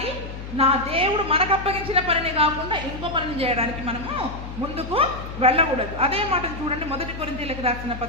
నా దేవుడు మనకు అప్పగించిన పనిని కాకుండా ఇంకో పనిని చేయడానికి మనము ముందుకు వెళ్ళకూడదు. అదే మాటను చూడండి, 1 కొరింథీయులకు రాసిన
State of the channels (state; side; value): noise; left; hum, 10 dB below the sound